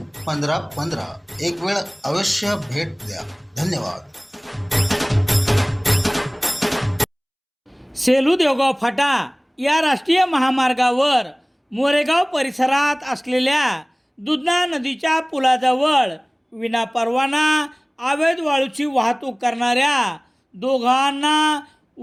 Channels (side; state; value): both; identical; correlation 1.00